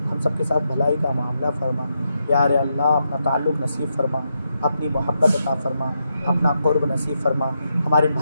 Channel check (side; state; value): both; inverted; correlation -0.83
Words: हम सब के साथ भलाई का मामला फरमा। यार अल्लाह अपना ताल्लुक़ नसीब फरमा, अपनी मोहब्बत अता फरमा, अपना क़ुर्ब नसीब फरमा, हमारे